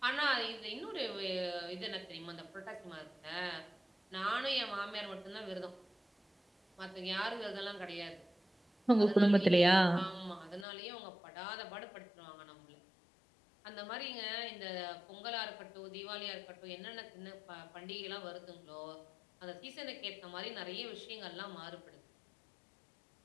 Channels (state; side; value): drops out; right; at 10.7 s